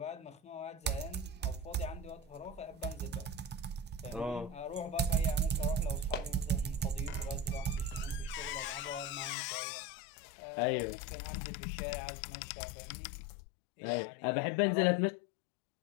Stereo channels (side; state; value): right; drops out; at 9.3 s